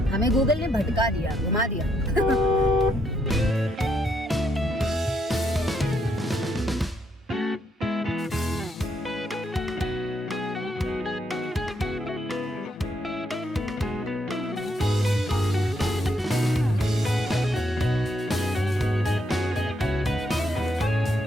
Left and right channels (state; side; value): normal; both; correlation 0.75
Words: हमें गूगल ने भटका दिया, घुमा दिया।